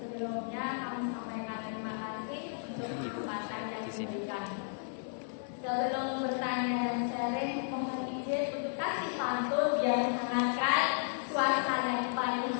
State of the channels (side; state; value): right; silent; 55 dB below the other